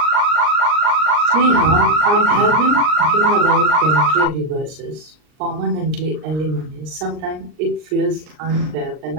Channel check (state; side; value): late; left; 39 ms